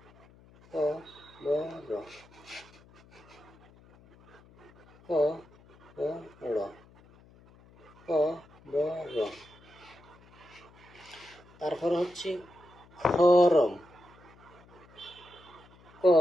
ক ব র, ক ব র, ক ব র। তারপর হচ্ছে খরম, ক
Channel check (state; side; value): noise; left; hum, 25 dB below the sound